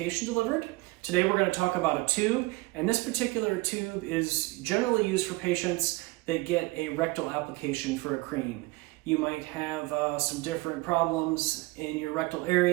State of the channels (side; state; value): left; quieter; 22.8 dB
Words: delivered. Today we're going to talk about a tube, and this particular tube is generally used for patients that get a rectal application for a cream. You might have some different problems in your rectal